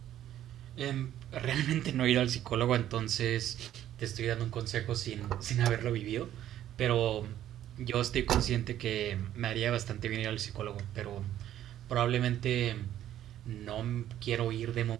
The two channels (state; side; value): quieter; left; 11.9 dB